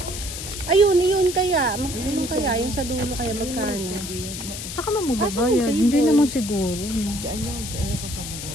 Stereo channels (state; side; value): noise; left; hiss, 8 dB below the sound